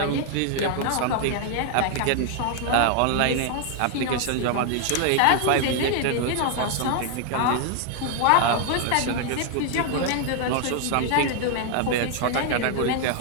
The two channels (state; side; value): different; both; correlation 0.00